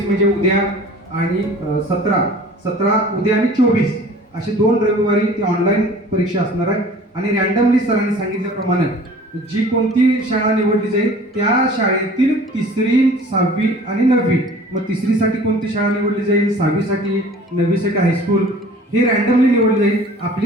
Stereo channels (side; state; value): both; normal; correlation 0.47